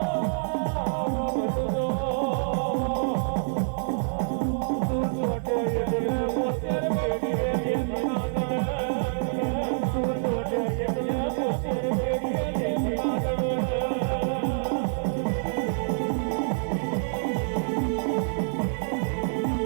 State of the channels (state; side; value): silent; left; 60 dB below the other